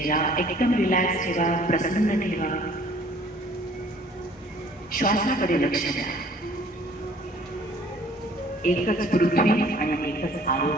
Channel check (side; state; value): both; normal; correlation 0.55